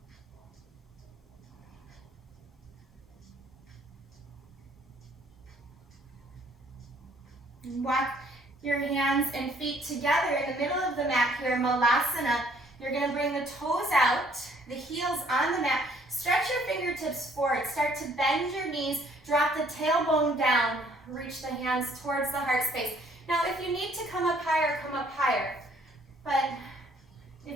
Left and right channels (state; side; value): normal; both; correlation 0.62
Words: Walk your hands and feet together in the middle of the mat here, malasana. You're going to bring the toes out, the heels on the mat. Stretch your fingertips forward. Start to bend your knees. Drop the tailbone down. Reach the hands towards the heart space. Now, if you need to come up higher, come up higher. But